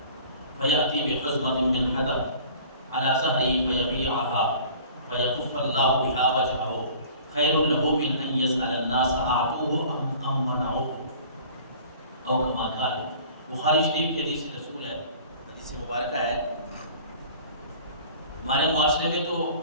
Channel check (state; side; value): inverted; both; correlation -0.47